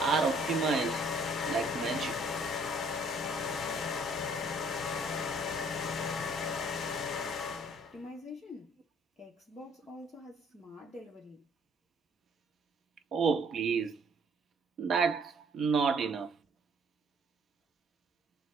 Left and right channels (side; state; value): both; normal; correlation 0.60